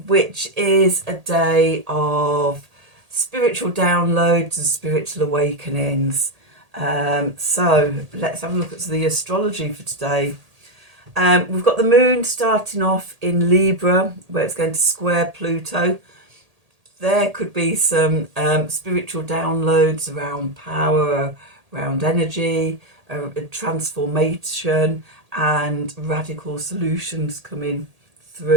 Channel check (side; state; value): left; late; 1.8 ms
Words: which is a day of spiritual downloads and spiritual awakenings. So let's have a look at the astrology for today. We've got the moon starting off in Libra, where it's going to square Pluto. There could be some spiritual downloads around power, around energy, transformation and radical solutions coming